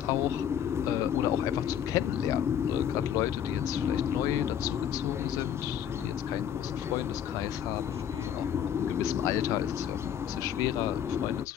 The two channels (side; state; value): right; quieter; 9.3 dB